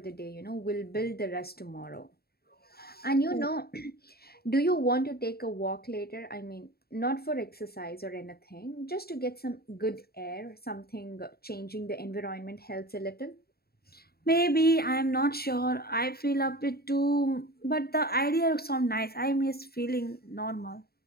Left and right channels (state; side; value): late; right; 0.45 ms